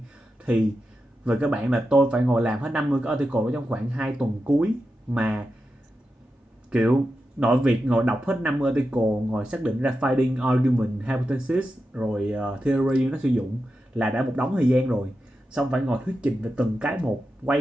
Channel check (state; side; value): normal; both; correlation 0.90